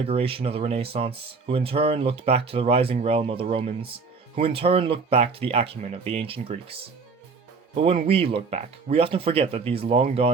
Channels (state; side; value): quieter; left; 4.8 dB